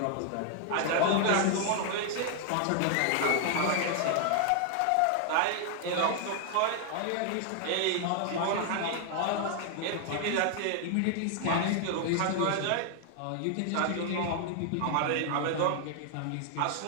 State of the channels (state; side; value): different; both; correlation 0.00